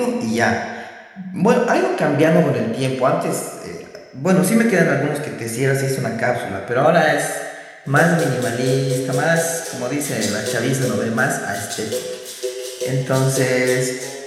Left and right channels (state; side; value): identical; both; correlation 1.00